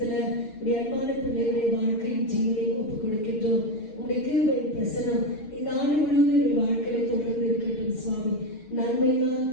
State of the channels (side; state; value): right; late; 6.4 ms